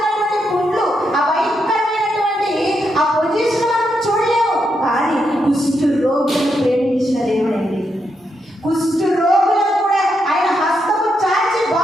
పుండ్లు, ఆ భయంకరమైనటువంటి ఆ పొజిషన్ మనం చూడలేము. కానీ కుష్టు రోగులను ప్రేమించిన దేవుడు అండి. కుష్టు రోగులను కూడా ఆయన హస్తము చాచి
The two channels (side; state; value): both; normal; correlation 0.81